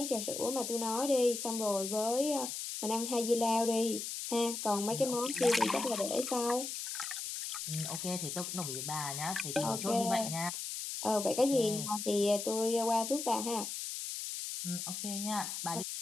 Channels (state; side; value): noise; left; hiss, 5 dB below the sound